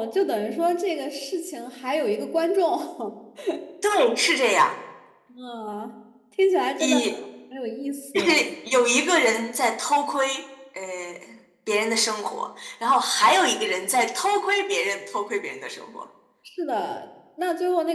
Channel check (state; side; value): identical; both; correlation 1.00